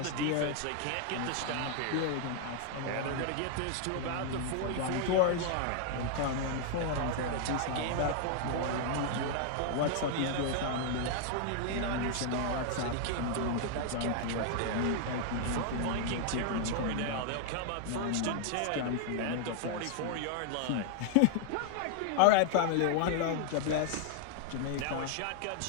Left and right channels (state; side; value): different; both; correlation 0.00